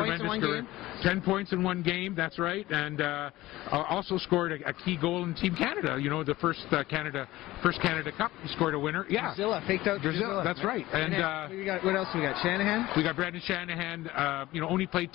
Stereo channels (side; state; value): right; quieter; 17.3 dB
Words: career. 10 points in 1 game. That's right, and also scored a key goal in Team Canada. You know, the first Canada Cup. He scored a winner. Yeah, Drusilla, faked out Drusilla. That's right. And what else we got? Shanahan. We got Brendan Shanahan. You know, only played